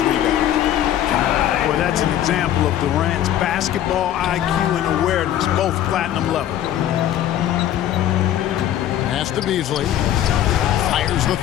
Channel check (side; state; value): right; quieter; 11.6 dB